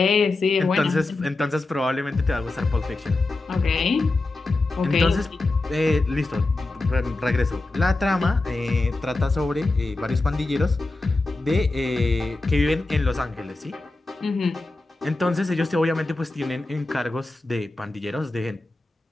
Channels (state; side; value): quieter; right; 3.1 dB